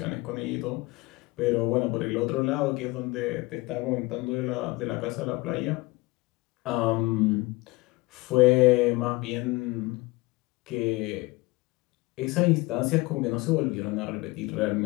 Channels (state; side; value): quieter; right; 22.5 dB